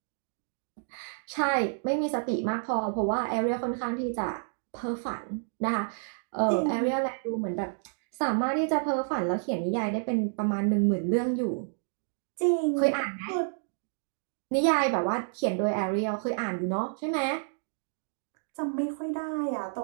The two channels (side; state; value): left; silent; digital silence